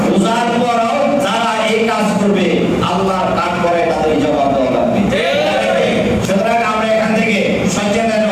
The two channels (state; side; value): identical; both; correlation 1.00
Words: রোজার পরও যারা এই কাজ করবে আল্লাহর ডাক করে তাদের জবাব দেওয়া লাগবে। সুতরাং আমরা এখান থেকে সচেতন